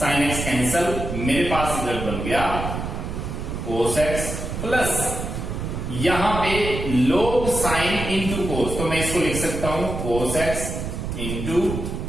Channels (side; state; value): right; noise; rumble, 5 dB below the sound